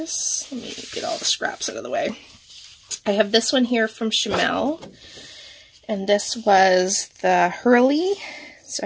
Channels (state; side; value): identical; both; correlation 1.00